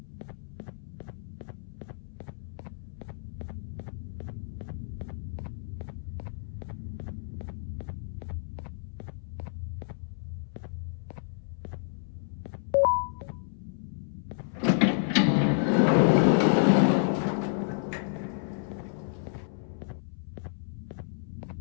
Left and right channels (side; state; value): right; silent; 57 dB below the other